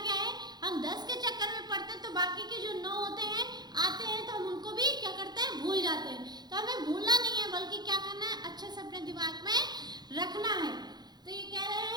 है, हम 10 के चक्कर में पढ़ते हैं तो बाकी के जो 9 होते हैं आते हैं तो हम उनको भी क्या करते हैं, भूल जाते हैं। तो हमें भूलना नहीं है, बल्कि क्या करना है, अच्छे से अपने दिमाग में रखना है। तो ये कह रहे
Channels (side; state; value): left; late; 0.20 ms